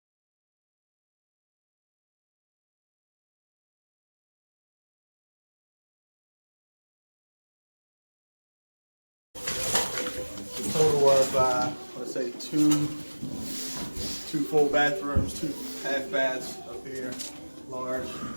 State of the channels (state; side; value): inverted; both; correlation -1.00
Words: A total of, let's say, two full bathrooms, 2 half baths up here, large